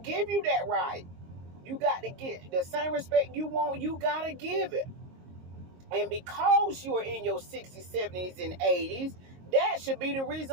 you that right. You got to get the same respect you want. You got to give it. And because you are in your 60s, 70s, and 80s, that should be the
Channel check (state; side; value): late; left; 22 ms